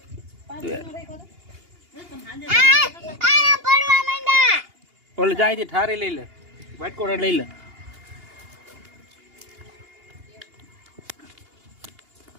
ઓલે જાય છે ઠારી લઈ લે. વ્હાઈટ કોટર લઈ લે.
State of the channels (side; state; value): left; late; 2.8 ms